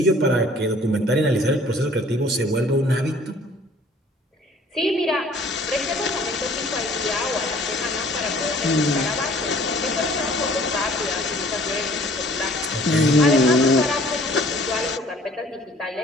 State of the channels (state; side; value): normal; both; correlation 0.53